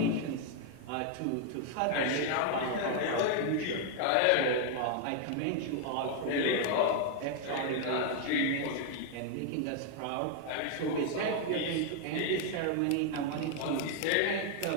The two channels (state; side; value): different; both; correlation 0.00